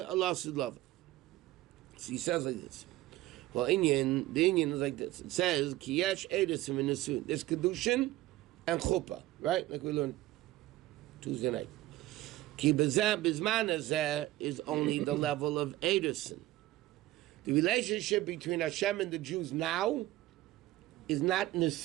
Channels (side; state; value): left; quieter; 16.6 dB